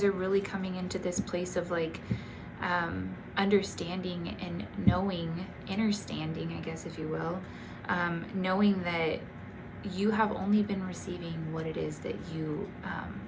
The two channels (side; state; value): both; identical; correlation 1.00